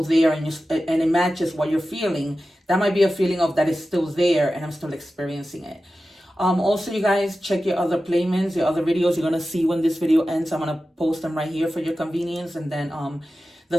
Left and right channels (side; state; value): both; normal; correlation 0.94